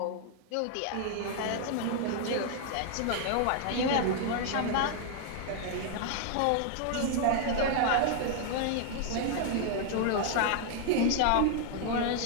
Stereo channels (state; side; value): different; both; correlation 0.00